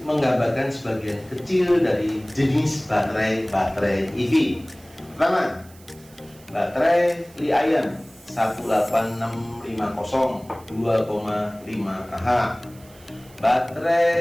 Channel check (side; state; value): right; noise; hiss, 25 dB below the sound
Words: menggambarkan sebagian kecil dari jenis baterai EV. Pertama, baterai Li-ion 18650 2,5 Ah.